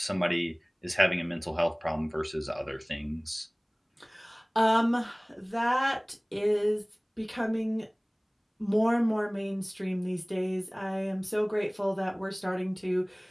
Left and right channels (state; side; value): identical; both; correlation 1.00